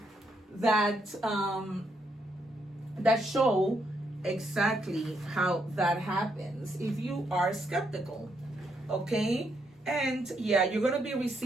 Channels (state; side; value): normal; both; correlation 0.77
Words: show exactly how that happens if you are skeptical. Okay. And yeah, you're going to be